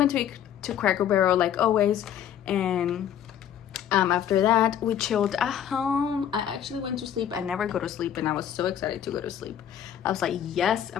to Cracker Barrel like always, and after that we chilled at home. I actually went to sleep. I never go to sleep, and I was so excited to go to sleep. I was like, yes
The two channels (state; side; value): quieter; right; 9.8 dB